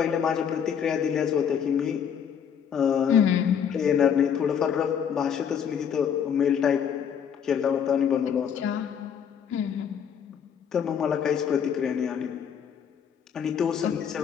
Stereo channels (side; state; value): right; quieter; 7.9 dB